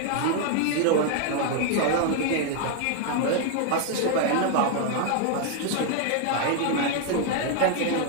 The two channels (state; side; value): different; both; correlation 0.00